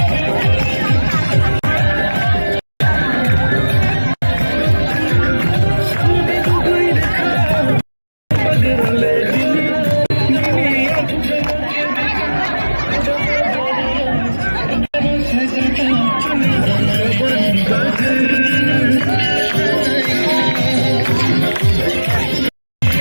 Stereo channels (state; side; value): inverted; both; correlation -1.00